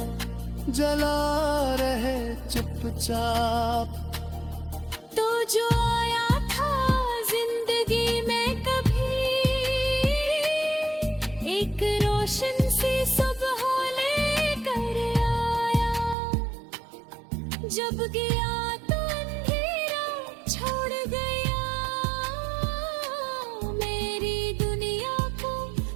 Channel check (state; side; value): drops out; left; at 16.2 s